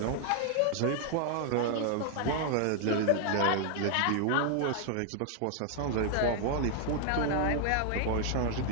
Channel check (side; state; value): both; different; correlation 0.00